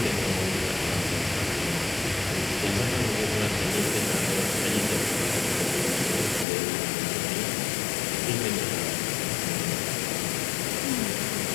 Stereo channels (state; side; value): drops out; right; at 6.5 s